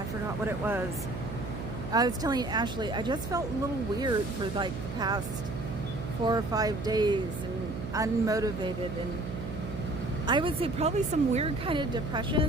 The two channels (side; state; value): right; noise; hum, 7 dB below the sound